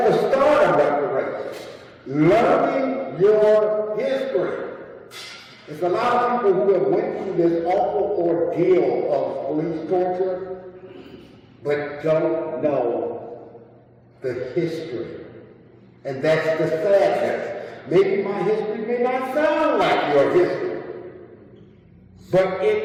the start of reparations. Learning your history. There's a lot of people who have went through this awful ordeal of police torture, but don't know the history. And that's the sadness. Maybe my history may not sound like your history, but it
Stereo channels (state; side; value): identical; both; correlation 1.00